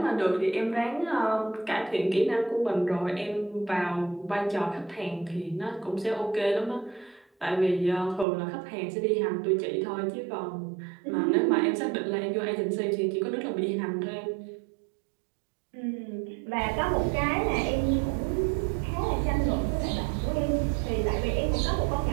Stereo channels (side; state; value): left; drops out; at 8.2 s